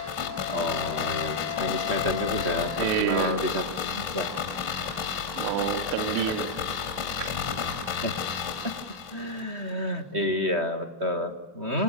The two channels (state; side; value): late; left; 3.0 ms